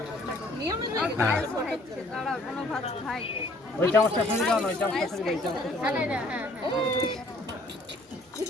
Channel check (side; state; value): both; normal; correlation 0.59